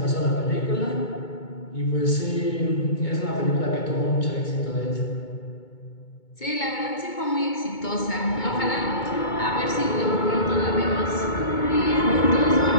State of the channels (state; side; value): late; right; 2.2 ms